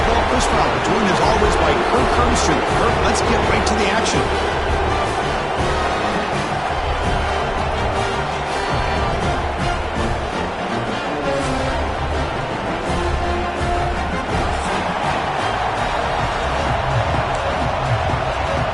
Chris Fowler, joined as always by Kirk Hermstreet. Kirk, let's get right to the action.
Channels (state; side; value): identical; both; correlation 1.00